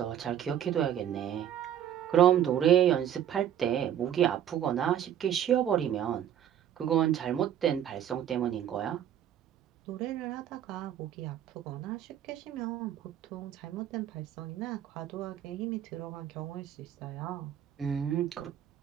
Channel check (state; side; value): quieter; left; 10.2 dB